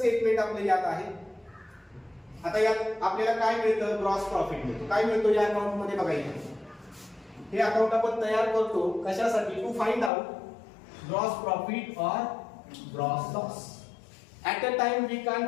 आपलं यात आहे. आता यात आपल्याला काय मिळतं? ग्रॉस प्रॉफिट मिळतो. काय मिळतो या अकाउंट मध्ये? बघा इथे हे अकाउंट आपण तयार करतो कशासाठी? To find out gross profit और gross loss. At a time we can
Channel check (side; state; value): right; drops out; at 10.1 s